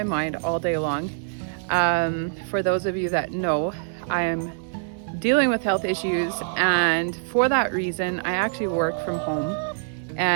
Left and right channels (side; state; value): left; silent; 62 dB below the other